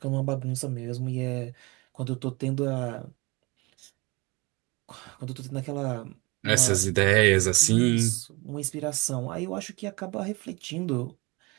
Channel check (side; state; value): left; quieter; 25.5 dB